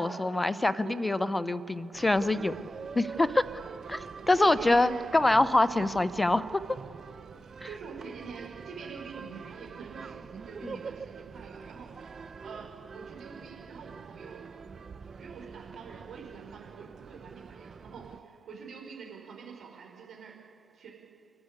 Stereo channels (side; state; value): both; normal; correlation 0.95